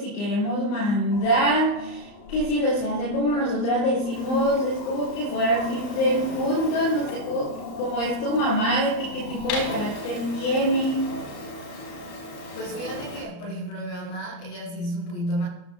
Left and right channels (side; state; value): right; late; 34 ms